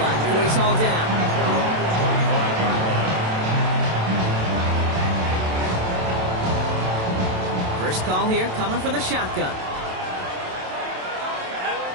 line before he's hauled down. First call here coming from the shotgun.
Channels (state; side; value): late; left; 27 ms